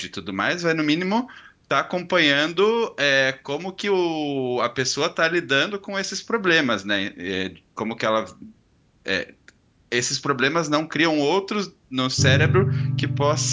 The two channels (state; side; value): identical; both; correlation 1.00